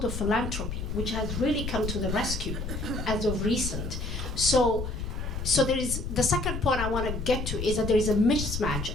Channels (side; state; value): left; noise; rumble, 5 dB below the sound